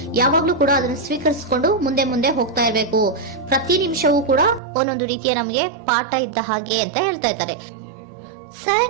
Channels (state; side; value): drops out; left; at 4.6 s